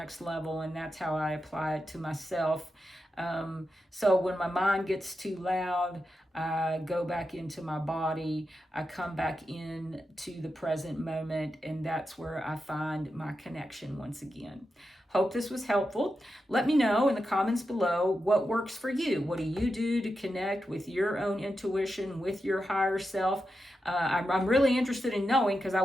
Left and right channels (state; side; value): normal; both; correlation 0.89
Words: level. And that's how I apply it to myself. So when my mind gets too loud, I go back into my body, I come back in to the present moment, and that's where I find my connection once again. Hope this was helpful. Let me know in the comments below what works for you. What do you do to connect with your own intuition, with your higher self? I'm really interested in knowing, because I